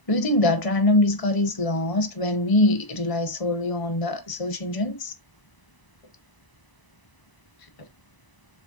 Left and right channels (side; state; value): right; late; 1.0 ms